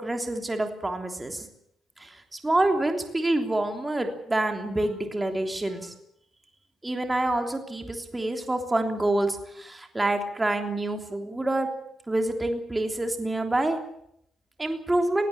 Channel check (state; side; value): normal; both; correlation 0.94